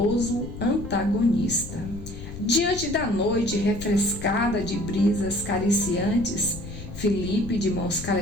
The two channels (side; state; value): left; noise; rumble, 11 dB below the sound